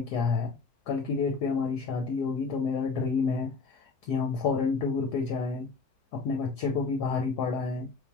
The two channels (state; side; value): quieter; right; 4.5 dB